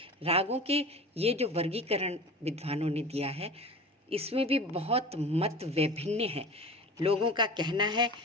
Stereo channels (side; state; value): both; normal; correlation 0.35